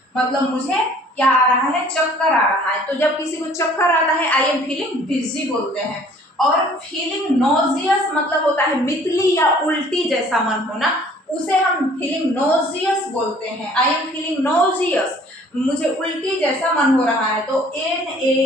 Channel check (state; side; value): normal; both; correlation 0.54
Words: मतलब मुझे क्या आ रहा है, चक्कर आ रहा है। तो जब किसी को चक्कर आता है, आई एम फीलिंग डिजी बोलते हैं। और फीलिंग नोजियस मतलब होता है मितली या उल्टी जैसा मन होना, उसे हम फीलिंग नोजियस बोलते हैं, आई एम फीलिंग नोजियस, मुझे उल्टी जैसा मन हो रहा है। तो